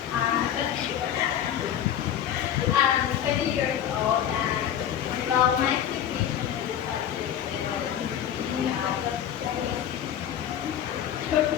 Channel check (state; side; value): quieter; right; 10.1 dB